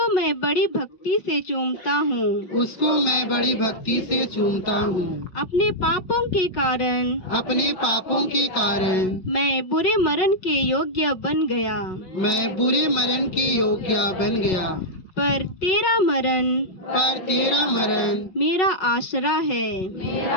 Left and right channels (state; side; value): late; right; 5.4 ms